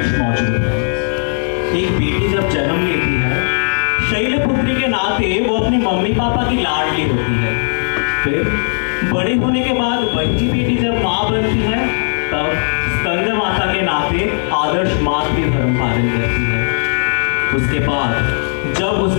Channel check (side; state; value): right; silent; digital silence